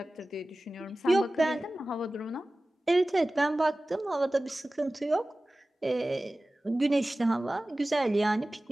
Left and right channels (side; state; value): both; normal; correlation 0.97